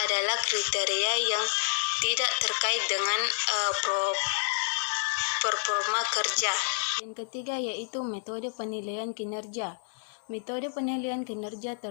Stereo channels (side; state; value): right; silent; digital silence